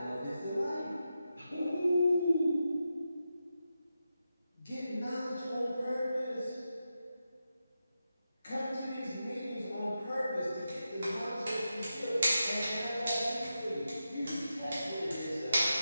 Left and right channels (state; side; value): inverted; both; correlation -0.89